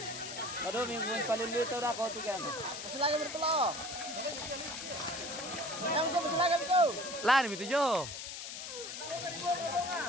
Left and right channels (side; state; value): left; noise; hiss, 8 dB below the sound